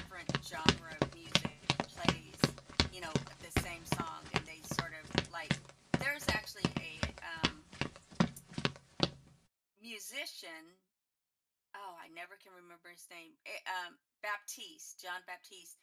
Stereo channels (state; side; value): identical; both; correlation 1.00